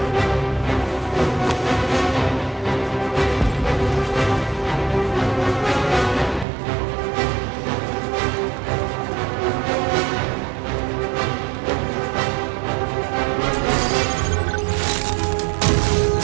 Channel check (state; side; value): drops out; left; at 6.5 s